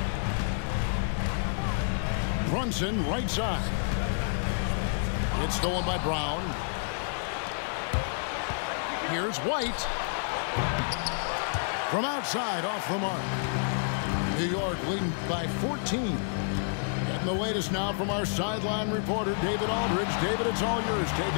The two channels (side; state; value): right; silent; digital silence